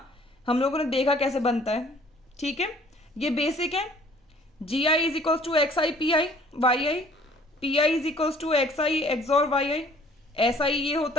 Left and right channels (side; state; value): both; normal; correlation 0.56